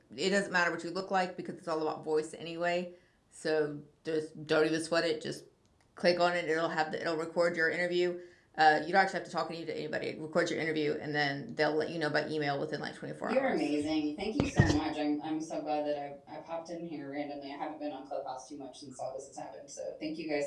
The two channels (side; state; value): both; identical; correlation 1.00